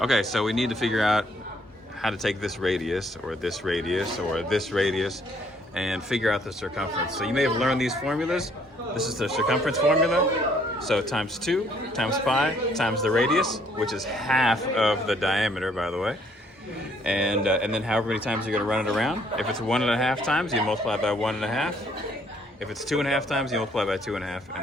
Okay, so we need to figure out how to take this radius, or this radius, or this radius, and figure out the circumference. So you may have learned these formulas. This is the circumference formula. So times 2 times pi times the radius, which is half of the diameter, by the way. And then however many times you're going to run it around. If it's 1.5 times, you multiply by 1.5. If it's 2.5 times, you multiply by 2.5,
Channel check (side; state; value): both; normal; correlation 0.65